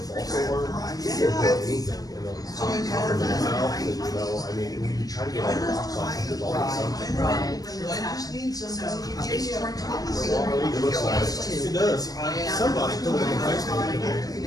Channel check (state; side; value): late; right; 0.18 ms